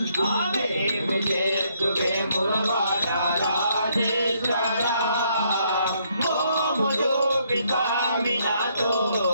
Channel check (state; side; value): inverted; both; correlation -0.71